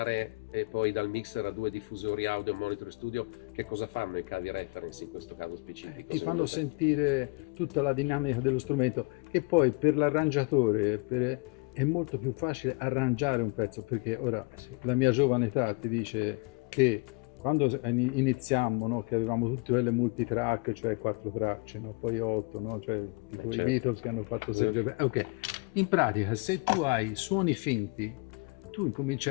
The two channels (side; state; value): right; quieter; 29.5 dB